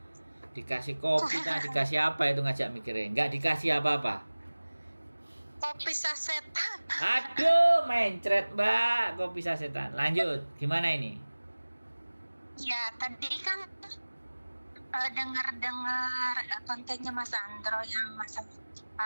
Dikasih kopi, kan dikasih apa itu ngajak mikirnya? Nggak dikasih apa-apa. Kopi sasetan. Aduh, mencret Mbak, kopi sasetan. Lanjut, gimana ini? Ya, tadi kan dengar kontennya Mas Sandro yang masalah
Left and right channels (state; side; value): inverted; both; correlation -1.00